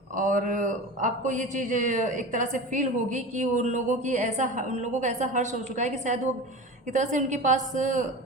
और आपको ये चीज़ एक तरह से फील होगी कि उन लोगों का ऐसा हर्ष हो चुका है कि शायद वो एक तरह से उनके पास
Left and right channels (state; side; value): normal; both; correlation 0.30